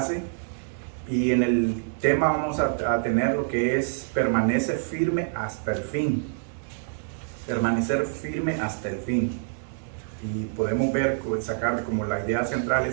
y en el tema vamos a tener lo que es permanece firme hasta el fin. Permanecer firme hasta el fin. Y podemos ver, sacar como la idea central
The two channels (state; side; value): silent; left; digital silence